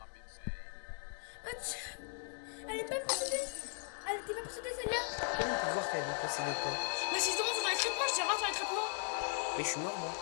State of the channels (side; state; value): right; silent; 52 dB below the other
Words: insane. Mathieu, elle est pas possédée. Elle était pas possédée celle-là. Comment on peut voir qu'elle est possédée ou pas? Mais si je demande sur les traitements, je dirais sur les traitements. Mais je suis mort, moi.